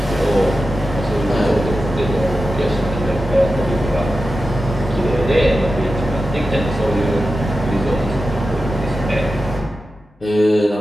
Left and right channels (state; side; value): normal; both; correlation 0.92